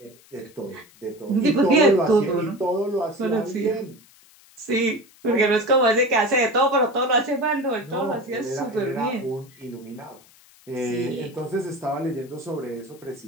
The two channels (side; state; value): left; noise; hiss, 27 dB below the sound